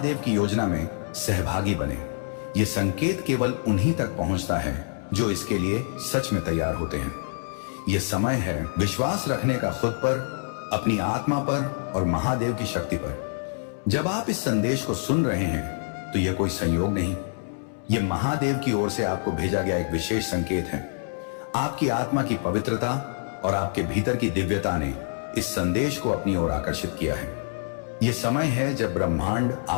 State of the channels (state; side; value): silent; right; 61 dB below the other